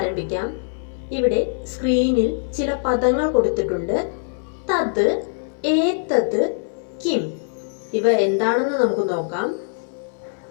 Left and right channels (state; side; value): silent; right; 64 dB below the other